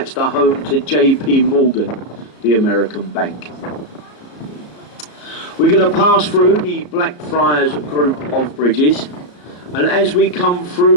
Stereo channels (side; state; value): right; late; 34 ms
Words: the home to J.P. Morgan, the American bank. We're going to pass through the Blackfriars group of bridges, and as we come